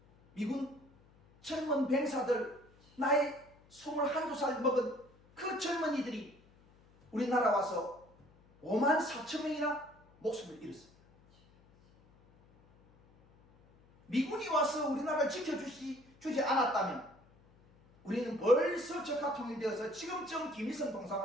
미군 젊은 병사들, 나이 21~22살 먹은 그 젊은이들이 우리나라 와서 5만 4천 명이나 목숨을 잃었습니다. 미군이 와서 우리나라를 지켜주지 않았다면 우리는 벌써 적화 통일되어서 지금쯤 김일성 동상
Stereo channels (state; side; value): noise; left; hum, 28 dB below the sound